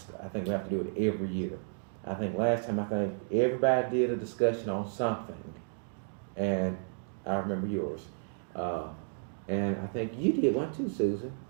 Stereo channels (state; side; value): silent; left; digital silence